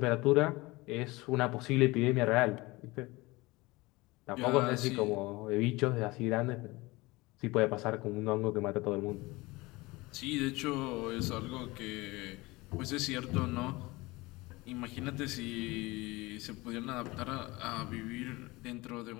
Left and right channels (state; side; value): quieter; right; 22.0 dB